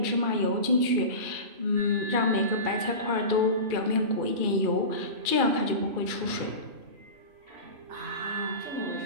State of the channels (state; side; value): late; left; 2.4 ms